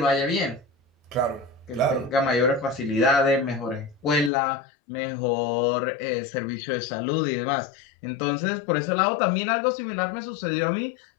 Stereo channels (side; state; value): right; drops out; at 4.3 s